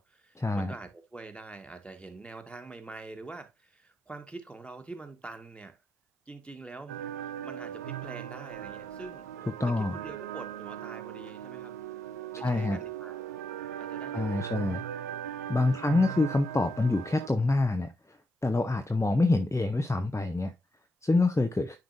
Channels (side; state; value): both; normal; correlation 0.83